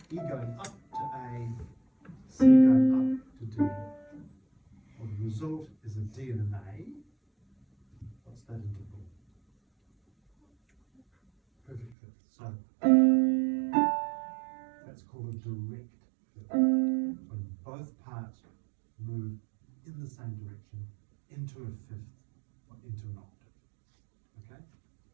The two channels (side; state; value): left; drops out; at 12.0 s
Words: E going up to A, C going up to D. Well, the result is a D and an A. What's that interval? So that's called a direct fifth. When both parts move in the same direction into a fifth or into an octave. Okay?